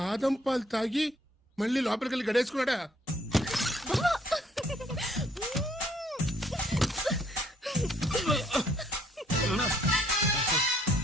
పాలు తాగి మళ్ళీ లోపలికెళ్ళి గడేసుకున్నాడా?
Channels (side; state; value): both; normal; correlation 0.65